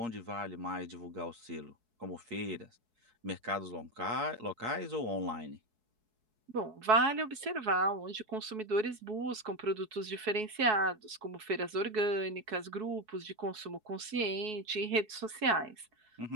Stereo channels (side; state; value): left; late; 4.7 ms